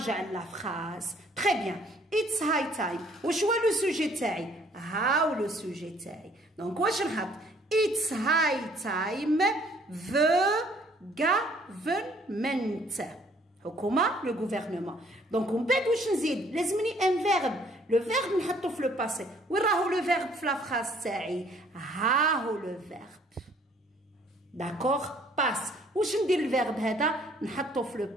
لا فراز. تري بيان. اتس هاي تايم واش هو لو سوجي تاعي؟ هاو لو سوجي تاعي. دونك واش نحط؟ اتس هاي تايم the government. حكومه لو غوفرنمون. دونك ومن بعد واش نزيد؟ لازمني ان فيرب. لو فيرب نحطو في لو باسي. وين راهو لو فيرب في لا فراز تاعي؟ ها هو لو فيرب. داكوغ، باس. واش ندير الفيرب هذا؟ نحطو في لو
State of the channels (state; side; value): normal; both; correlation 0.61